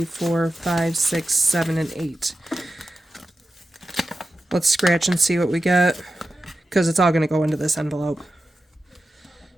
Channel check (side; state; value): both; normal; correlation 0.91